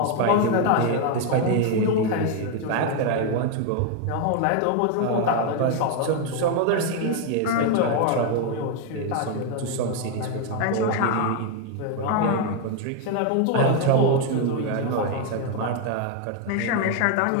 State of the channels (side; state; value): both; different; correlation 0.01